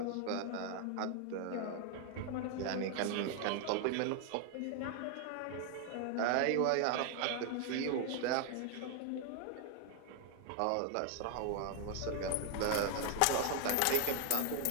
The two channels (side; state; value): both; different; correlation 0.00